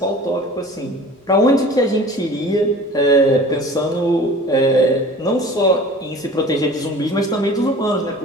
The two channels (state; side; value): normal; both; correlation 0.43